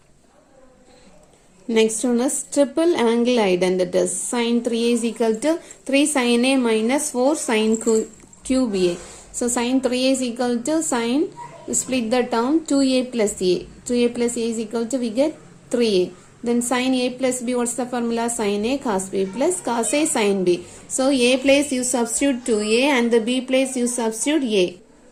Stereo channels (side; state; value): both; identical; correlation 1.00